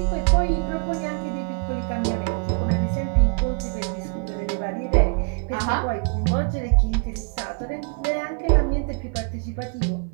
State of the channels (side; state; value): left; quieter; 36.3 dB